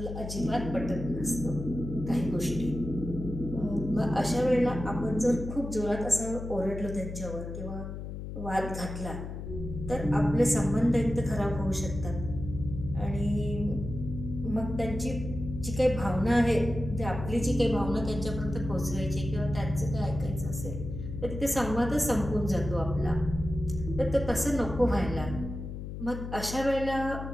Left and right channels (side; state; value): left; noise; hum, 8 dB below the sound